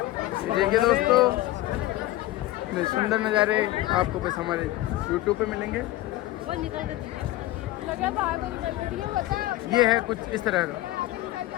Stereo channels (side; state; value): right; quieter; 16.4 dB